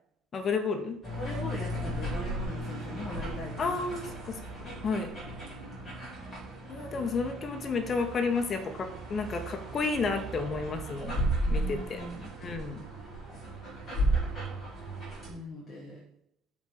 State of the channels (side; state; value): both; normal; correlation 0.64